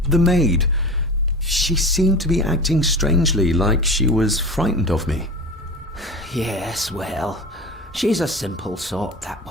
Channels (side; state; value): both; normal; correlation 0.33